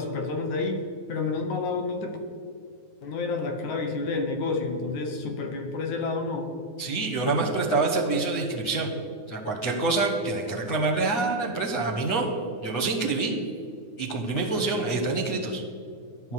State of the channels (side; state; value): right; late; 9.7 ms